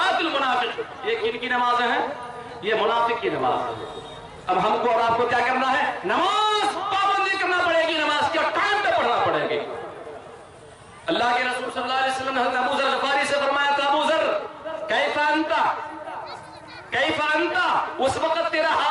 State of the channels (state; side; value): identical; both; correlation 1.00